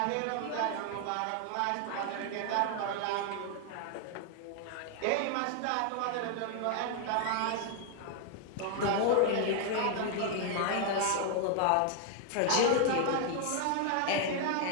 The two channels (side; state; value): both; different; correlation 0.00